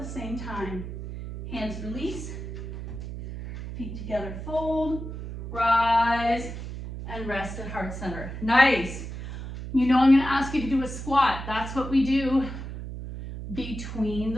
same time. Hands release. Feet together, fold. Rise and rest at heart center. Nice. You know I'm going to ask you to do a squat. That's what we do between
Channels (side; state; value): right; noise; hum, 8 dB below the sound